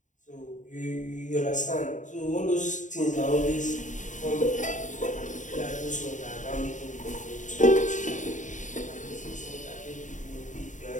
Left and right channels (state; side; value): late; right; 0.36 ms